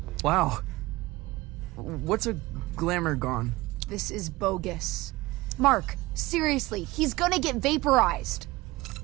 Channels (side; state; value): left; quieter; 20.2 dB